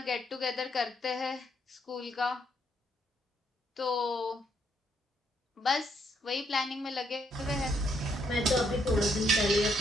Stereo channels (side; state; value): both; normal; correlation 0.73